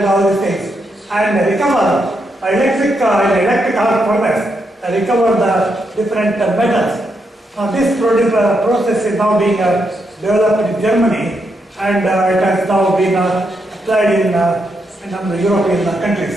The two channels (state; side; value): normal; both; correlation 0.81